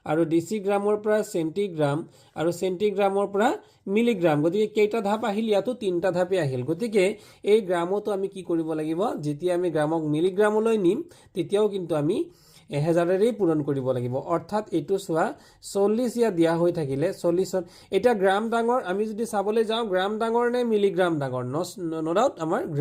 আৰু ডেচিগ্ৰামৰ পৰা চেণ্টিগ্ৰাম আৰু চেণ্টিগ্ৰামৰ পৰা মিলিগ্ৰাম গতিকে কেইটা ধাপ আহিল ইয়াতো 3টা ধাপে আহিল গতিকে এই গ্ৰামতো আমি কি কৰিব লাগিব যেতিয়া আমি গ্ৰামক মিলিগ্ৰামলৈ নিম তেতিয়াও কিন্তু আমি 1000ৰেই পূৰণ কৰিব লাগিব অৰ্থাৎ এইটো চোৱা 40 ইয়া দিয়া হৈ থাকিলে 40 এটা গ্ৰাম ডাঙৰ আমি যদি চাবলৈ যাওঁ গ্ৰাম ডাঙৰ নে মিলিগ্ৰাম ডাঙৰ নো ডাউট আমাৰ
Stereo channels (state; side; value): identical; both; correlation 1.00